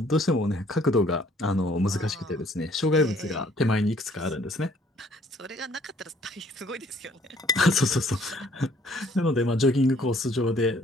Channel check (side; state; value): both; normal; correlation 0.61